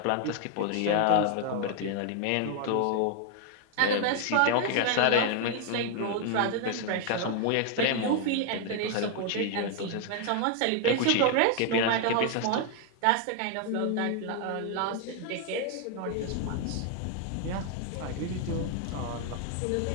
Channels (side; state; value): both; different; correlation 0.00